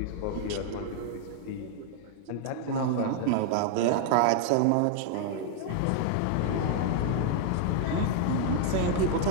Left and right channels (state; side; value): different; both; correlation 0.00